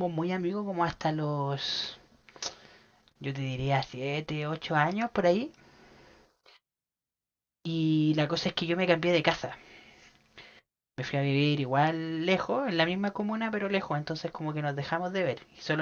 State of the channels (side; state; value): both; identical; correlation 1.00